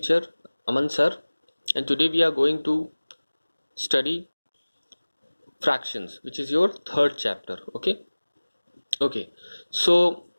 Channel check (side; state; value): both; inverted; correlation -1.00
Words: Aman sir, and today we are going to study fractions, which is your third chapter. Okay, so